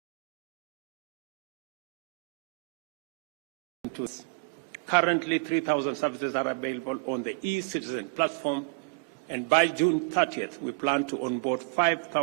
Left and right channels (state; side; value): quieter; left; 30.9 dB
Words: currently 3,000 services are available on the e-Citizen platform, and by June 30th, we plan to onboard